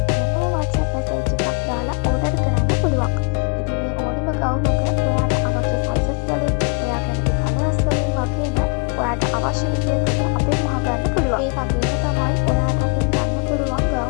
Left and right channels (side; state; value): right; quieter; 34.0 dB